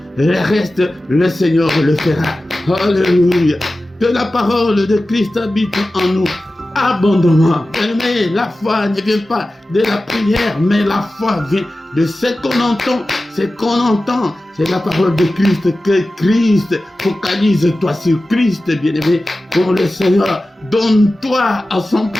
le reste, le Seigneur le fera. Alléluia. Que la parole de Christ habite en nous abondamment. Mais la foi ne vient pas de la prière, mais la foi vient de ce qu'on entend. Ce qu'on entend, c'est la parole de Christ. Que Christ, focalise-toi sur Christ, bien-aimé. Pour le Seigneur, donne-toi à 100%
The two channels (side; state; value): both; normal; correlation 0.95